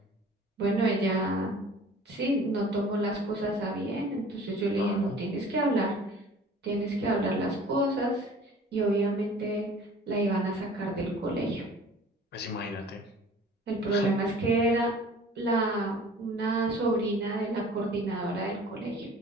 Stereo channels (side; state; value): both; normal; correlation 0.47